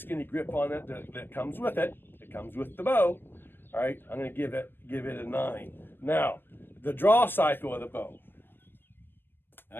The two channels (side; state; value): right; late; 0.098 ms